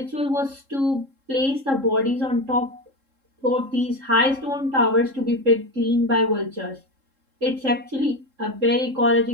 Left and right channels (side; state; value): left; late; 3.7 ms